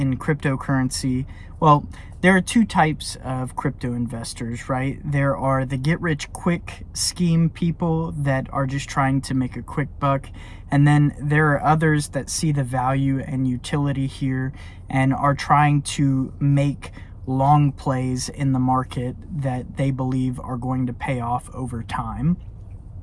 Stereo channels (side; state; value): both; identical; correlation 1.00